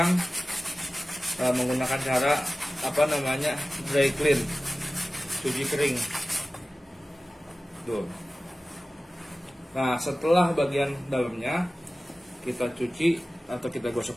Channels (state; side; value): normal; both; correlation 0.96